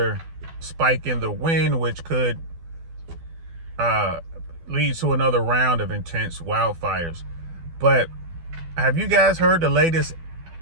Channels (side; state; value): left; late; 12 ms